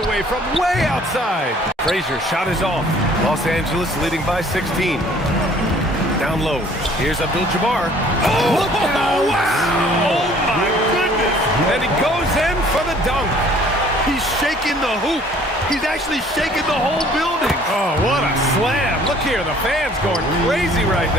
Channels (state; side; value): normal; both; correlation 0.55